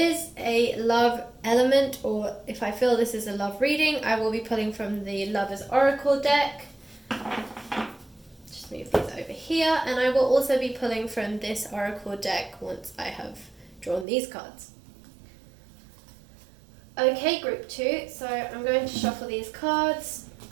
a love element, or if I feel this is a love reading, I will be pulling from the Lover's Oracle deck. Just move these over here, and I will also be pulling from this Oracle deck once I have drawn these cards. Okay, group two, so I'm going to shuffle these cards.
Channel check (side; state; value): left; drops out; at 14.1 s